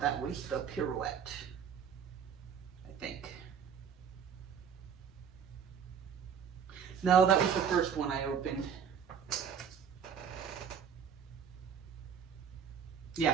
That was the Pirouette, I think. No, that was the first one I opened.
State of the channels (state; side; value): quieter; left; 7.5 dB